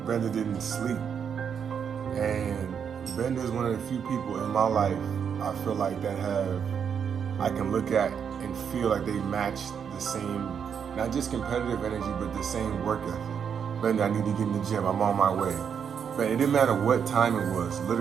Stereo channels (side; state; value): left; quieter; 7.4 dB